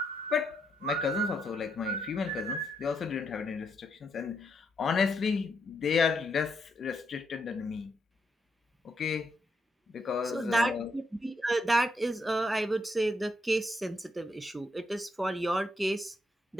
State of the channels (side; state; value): both; normal; correlation 0.78